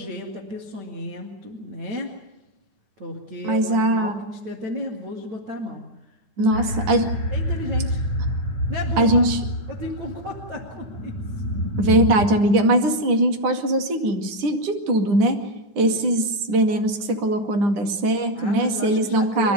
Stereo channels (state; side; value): late; left; 9.9 ms